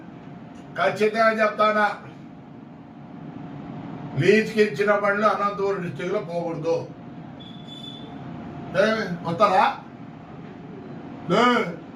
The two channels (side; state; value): both; identical; correlation 1.00